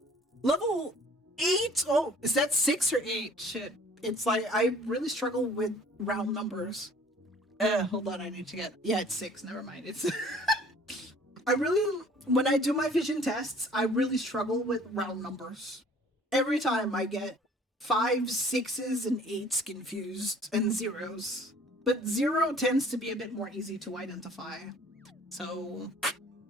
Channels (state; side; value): normal; both; correlation 0.53